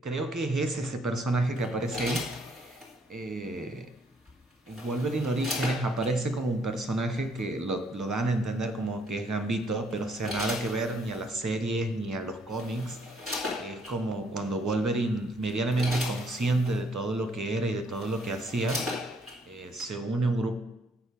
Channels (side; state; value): both; normal; correlation 0.67